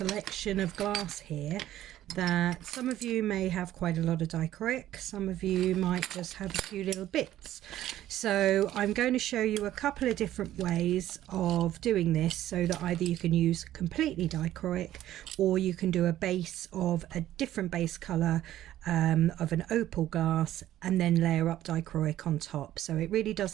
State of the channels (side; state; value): left; quieter; 13.2 dB